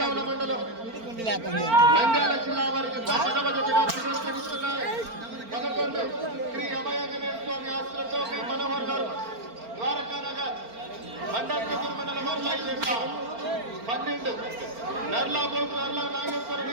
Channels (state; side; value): late; left; 4.4 ms